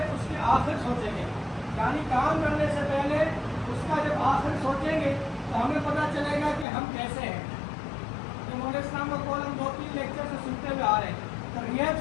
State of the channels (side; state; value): right; drops out; at 6.7 s